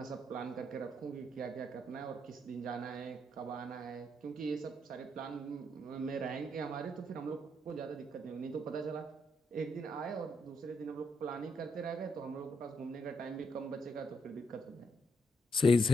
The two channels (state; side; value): normal; both; correlation 0.79